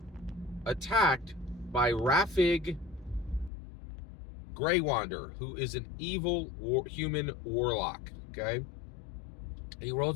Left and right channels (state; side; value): drops out; right; at 3.5 s